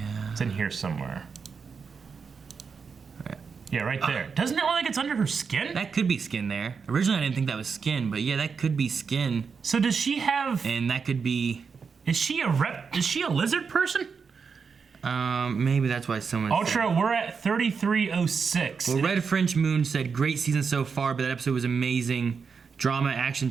It's in here somewhere. Right. Yeah, right there. Doesn't it look like it's under her skin? That could be skin there. Originally, I didn't think that was skin, but yeah, that could be skin. So does she have... And that could be... Is she a lizard person? Maybe that's why someone Ultra, we're at 3306. Well, Red French Moon said, great season so far, but that episode was amazing. Drama, action,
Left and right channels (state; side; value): quieter; left; 5.7 dB